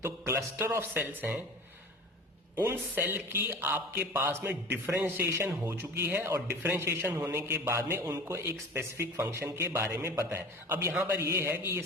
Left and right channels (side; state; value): both; normal; correlation 0.38